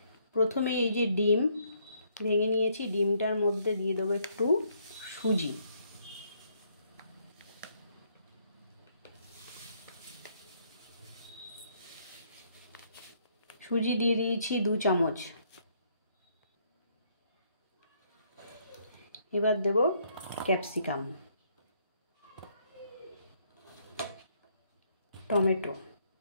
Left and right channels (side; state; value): both; inverted; correlation -0.69